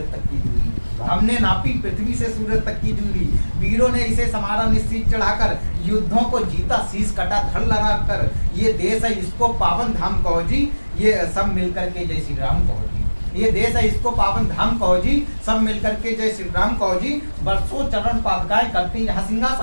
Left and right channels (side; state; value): both; inverted; correlation -1.00